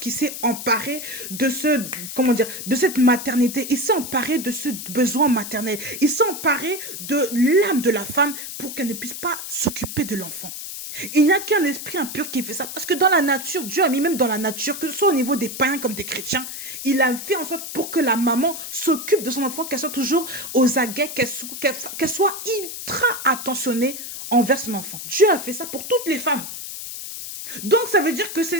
s'est emparé de de cette maternité. Il s'est emparé de ce besoin maternel. Il s'est emparé de l'âme de la femme pour qu'elle ne puisse pas s'occuper de l'enfant. Il n'y a qu'un esprit impur qui fait ça. Parce que dans la nature, Dieu a mis même dans la nature, que ce soit au niveau des païens comme des chrétiens, il a fait en sorte pour que la maman s'occupe de son enfant, qu'elle soit toujours aux aguets, qu'elle soit ultra attentionnée envers son enfant. Dieu a fait ça pour toutes les femmes. Donc ça veut dire que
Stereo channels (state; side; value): noise; left; hiss, 8 dB below the sound